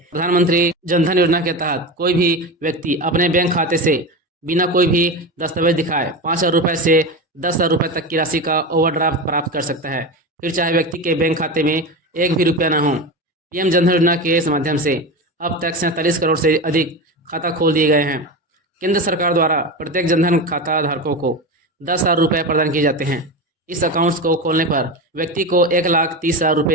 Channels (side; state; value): both; normal; correlation 0.23